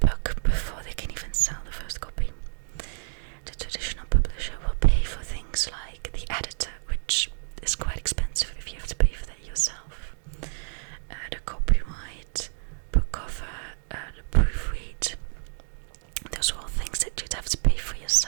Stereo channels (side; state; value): left; silent; digital silence